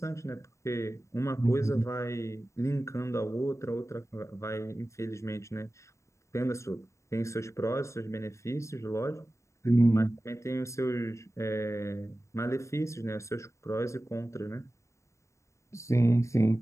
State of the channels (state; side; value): late; right; 0.14 ms